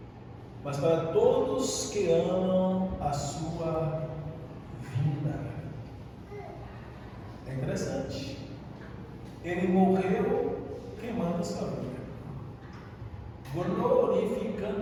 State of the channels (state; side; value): identical; both; correlation 1.00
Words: mas para todos que amam a sua vida. É interessante. Ele morreu queimando a sua vida,